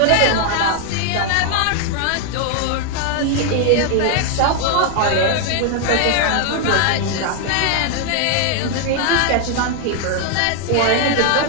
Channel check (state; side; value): different; both; correlation 0.00